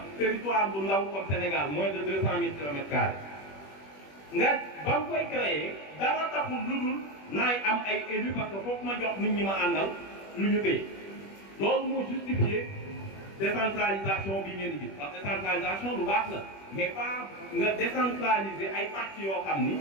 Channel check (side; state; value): right; late; 21 ms